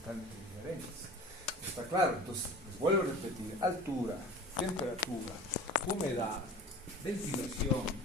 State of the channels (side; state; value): both; normal; correlation 0.40